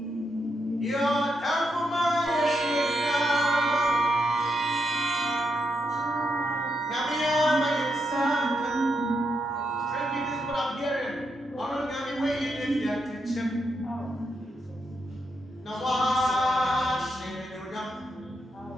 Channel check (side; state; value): both; normal; correlation 0.82